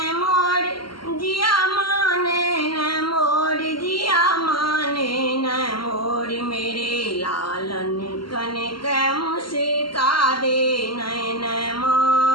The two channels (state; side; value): late; right; 0.73 ms